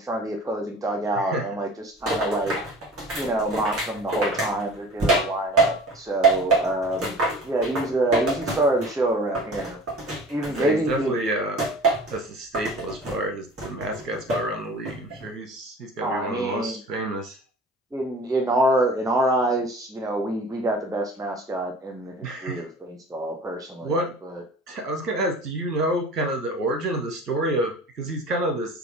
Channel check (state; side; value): normal; both; correlation 0.42